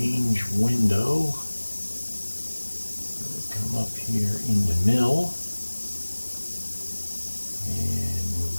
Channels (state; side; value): inverted; both; correlation -1.00